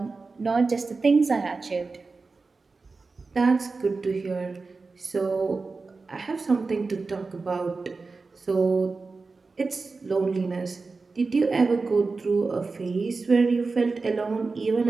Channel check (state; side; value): quieter; left; 4.1 dB